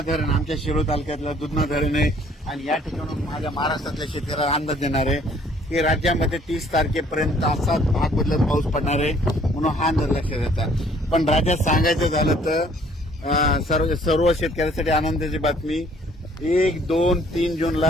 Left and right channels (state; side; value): normal; both; correlation 0.59